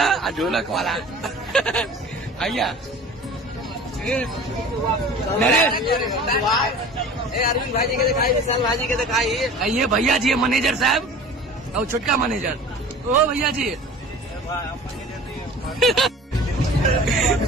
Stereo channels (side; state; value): both; normal; correlation 0.41